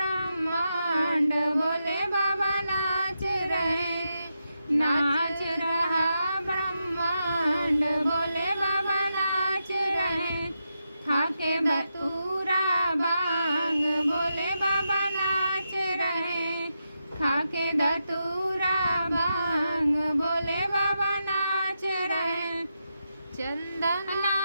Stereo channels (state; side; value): inverted; both; correlation -0.86